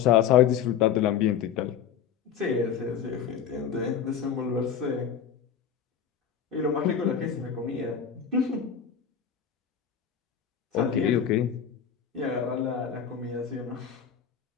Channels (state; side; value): quieter; right; 8.1 dB